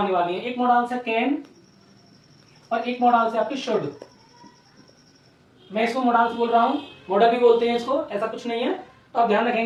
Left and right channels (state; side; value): identical; both; correlation 1.00